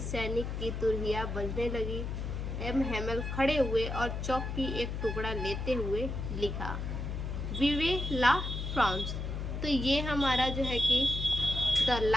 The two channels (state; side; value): noise; left; hum, 4 dB below the sound